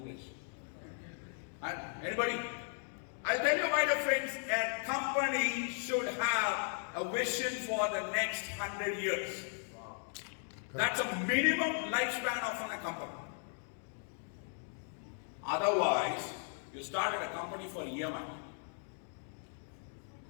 And anybody? I'll tell you, my dear friends, a company should have a vision for the next 100 years. Wow. That's a minimum lifespan of a company. Otherwise, you started a company for EMI.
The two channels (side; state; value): right; silent; 53 dB below the other